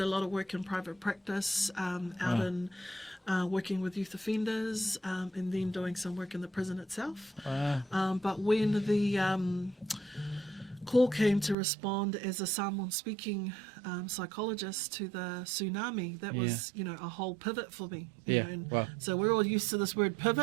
a lot of work in private practice, out in working with youth offenders, and then doing some work in the prison itself. But when the call came to respond as a Samoan-speaking psychologist to the tsunami, that was, a whole pivot for me. So we're all used to this word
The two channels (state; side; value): drops out; left; at 11.6 s